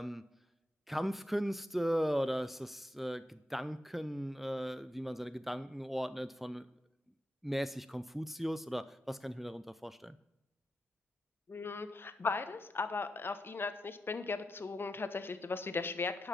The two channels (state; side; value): normal; both; correlation 0.87